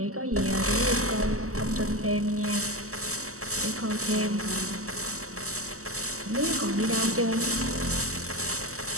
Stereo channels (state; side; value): late; left; 0.64 ms